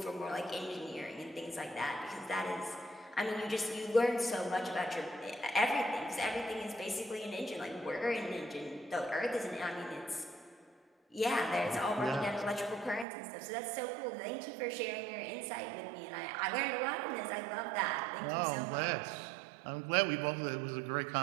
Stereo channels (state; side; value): drops out; left; at 13.1 s